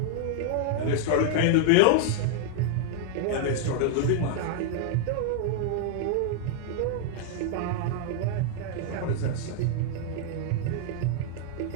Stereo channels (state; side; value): different; both; correlation 0.00